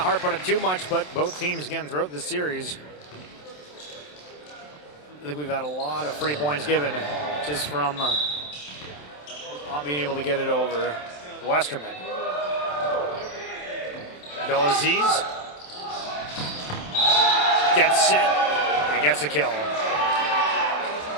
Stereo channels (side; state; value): right; late; 27 ms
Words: harp on it too much, but both teams, again, throughout this series, I think we've had a lot of free points given just from not being able to get it over Westerman. Abdelaziz gets it and gets a kill.